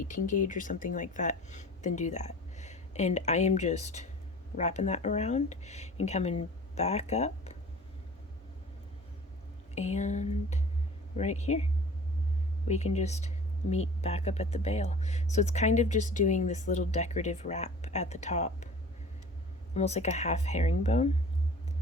gauge or something like that, then do that. And I am just wrapping that around and coming back up, and right here we can just meet back up at the bail. So it's kind of just doing this little decorative wrap at the top, almost like a half herringbone.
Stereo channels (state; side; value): normal; both; correlation 0.43